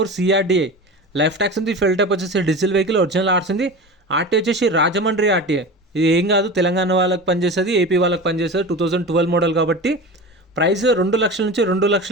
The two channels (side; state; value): both; normal; correlation 0.30